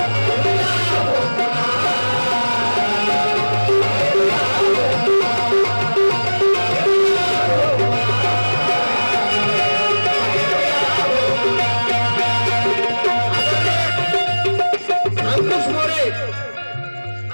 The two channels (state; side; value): inverted; both; correlation -1.00